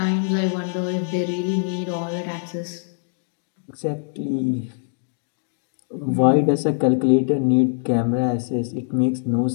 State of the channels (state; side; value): silent; right; digital silence